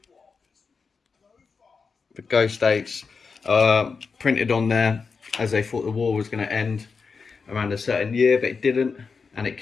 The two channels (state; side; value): quieter; right; 5.1 dB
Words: The ghost dates are printed on there as they thought the war was going to end around a certain year, but it didn't, and it